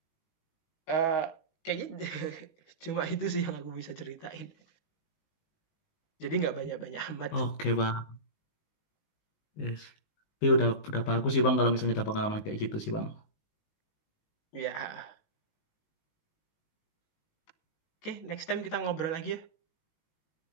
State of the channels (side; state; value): right; late; 19 ms